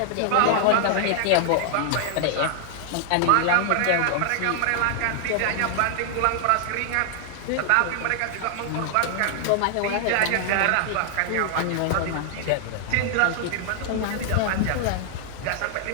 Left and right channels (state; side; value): different; both; correlation 0.00